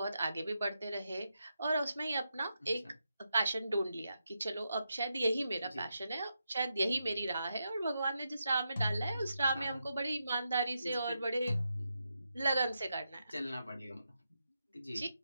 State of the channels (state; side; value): inverted; both; correlation -0.86